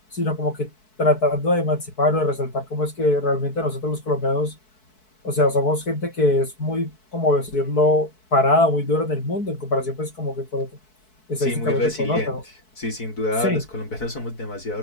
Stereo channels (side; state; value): right; late; 4.6 ms